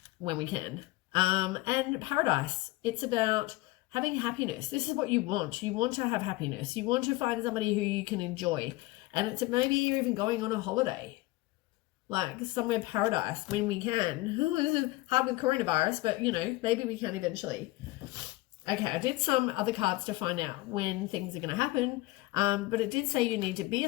when we can. And paradise. It's about having happiness. This is what you want. You want to have happiness. You want to find somebody who you can enjoy. And it's maybe you're even going on a holiday. Like somewhere paradise when we can. This is hard with coronavirus, but you know, maybe we can eventually. Okay, I did some other cards to find out when things are going to happen. But it did say you need to be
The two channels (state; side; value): quieter; right; 20.3 dB